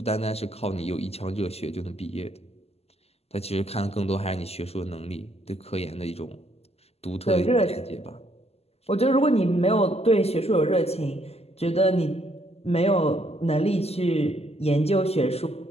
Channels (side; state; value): right; late; 0.29 ms